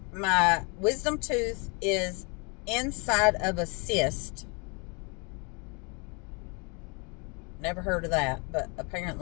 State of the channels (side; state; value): right; quieter; 33.3 dB